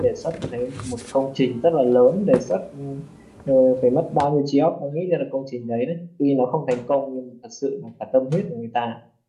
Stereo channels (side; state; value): both; identical; correlation 1.00